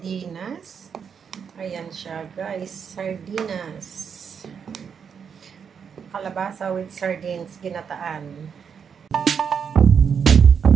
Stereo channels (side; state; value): left; quieter; 6.9 dB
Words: Ayan siya, guys. Sardinas. Kalabasa with sardines, ginataan.